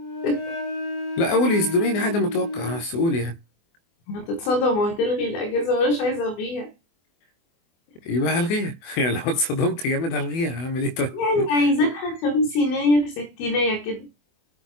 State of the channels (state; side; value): late; right; 24 ms